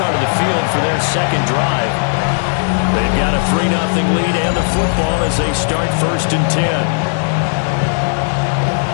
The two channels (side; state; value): right; silent; digital silence